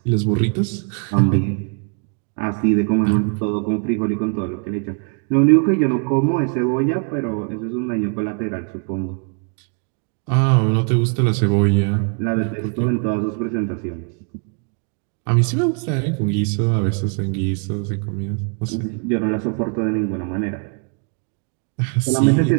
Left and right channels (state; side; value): quieter; left; 39.8 dB